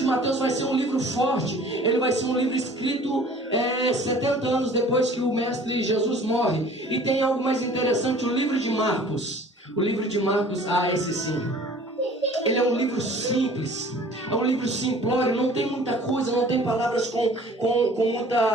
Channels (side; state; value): both; normal; correlation 0.49